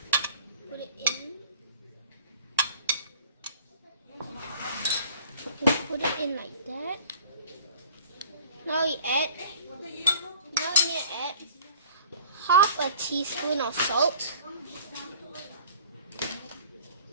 Put it in. Just put it in like that. Now we need to add half a teaspoon of salt.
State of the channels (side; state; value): both; inverted; correlation -0.48